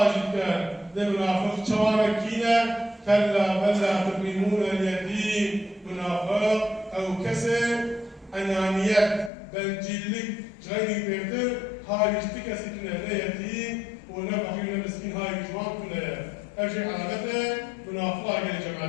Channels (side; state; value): right; drops out; at 9.3 s